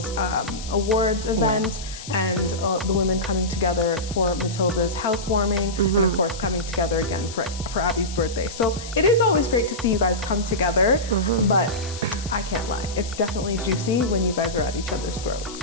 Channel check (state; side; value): noise; left; hiss, 13 dB below the sound